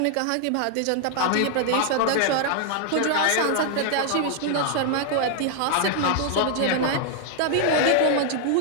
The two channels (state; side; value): different; both; correlation 0.00